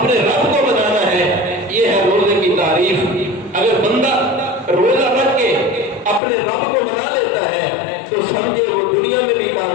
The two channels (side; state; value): right; drops out; at 6.2 s